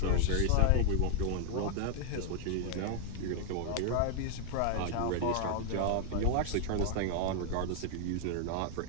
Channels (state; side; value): different; both; correlation 0.00